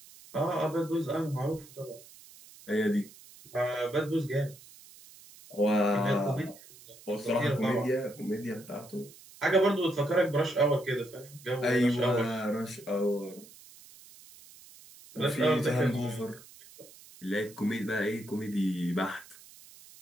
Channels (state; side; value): noise; right; hiss, 21 dB below the sound